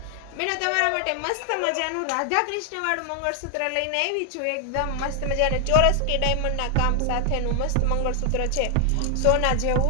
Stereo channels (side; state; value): both; different; correlation 0.00